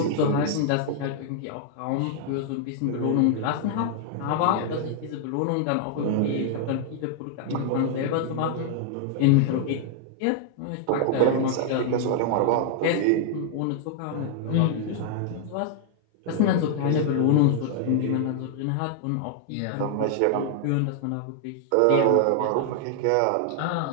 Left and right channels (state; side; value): different; both; correlation 0.00